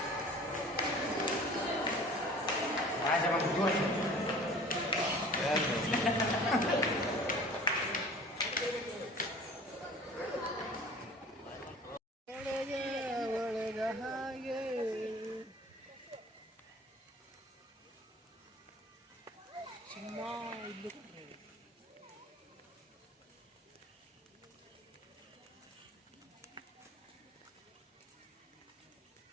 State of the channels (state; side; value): normal; both; correlation 0.45